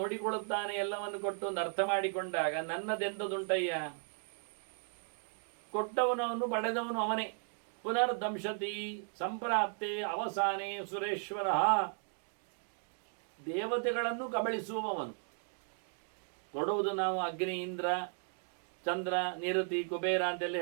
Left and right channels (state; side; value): silent; left; 54 dB below the other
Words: ಎಲ್ಲವನ್ನು ಕೊಟ್ಟು ಒಂದು ಅರ್ಥ ಮಾಡಿಕೊಂಡಾಗ ನನ್ನದೆಂತದುಂಟಯ್ಯ, ಕೊಟ್ಟವನವನು ಪಡೆದವನು ಅವನೇ. ಪುನರ್ದಂಶತಿ ಸಂಪ್ರಾಪ್ತೆ ಅವಸಾನೆ ಸುರೇಶ್ವರ, ದೇವತೆಗಳನ್ನು ಕಬಳಿಸುವವನು. ಕೊಡುವುದು ನಾವು ಅಗ್ನಿ, ಇಂದ್ರ, ಚಂದ್ರ, ನಿರತಿ, ಕುಬೇರ ಅಂತೆಲ್ಲ